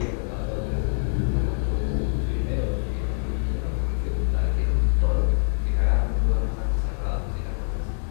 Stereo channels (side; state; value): right; silent; digital silence